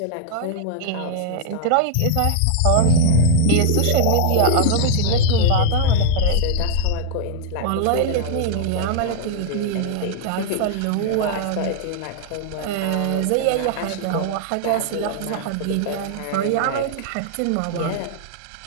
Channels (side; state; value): both; different; correlation -0.01